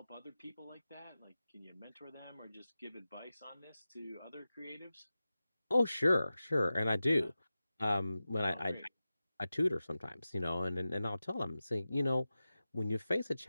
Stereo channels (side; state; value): both; inverted; correlation -0.94